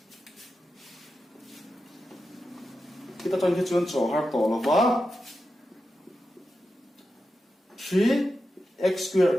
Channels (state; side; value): normal; both; correlation 0.90